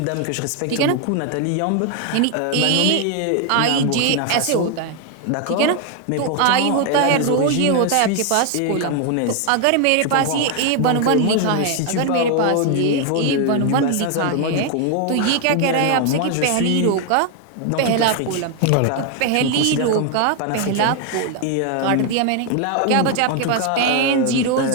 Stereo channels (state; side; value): different; both; correlation 0.01